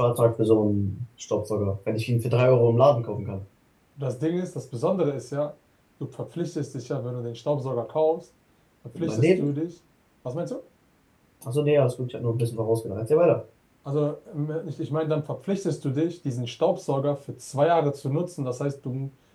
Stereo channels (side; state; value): both; identical; correlation 1.00